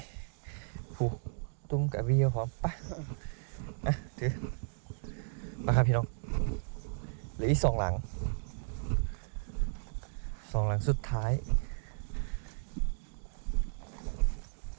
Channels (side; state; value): left; silent; digital silence